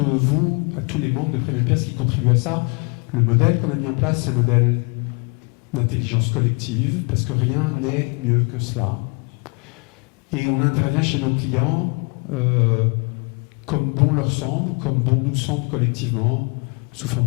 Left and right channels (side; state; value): right; quieter; 32.5 dB